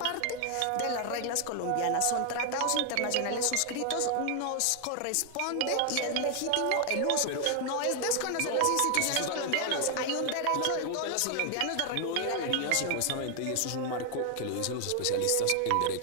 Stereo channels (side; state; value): both; different; correlation 0.00